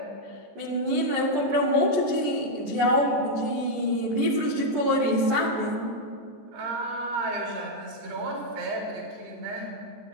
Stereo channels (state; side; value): late; left; 14 ms